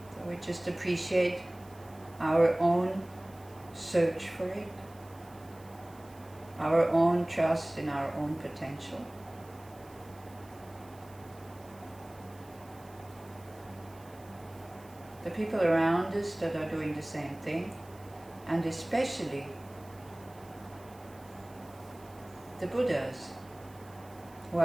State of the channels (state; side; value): noise; right; hiss, 25 dB below the sound